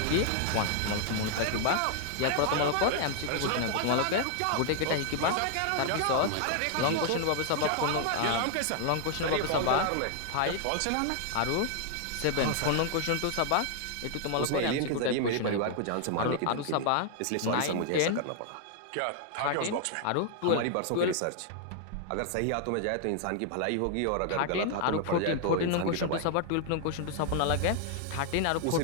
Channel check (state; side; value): different; both; correlation 0.00